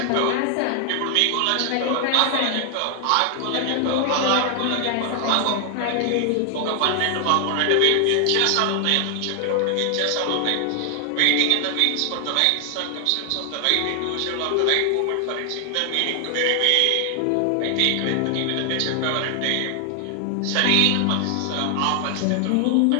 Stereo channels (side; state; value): both; different; correlation 0.00